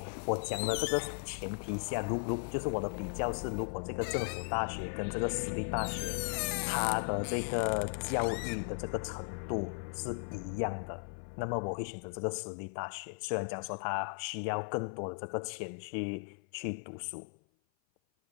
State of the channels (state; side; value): silent; right; 54 dB below the other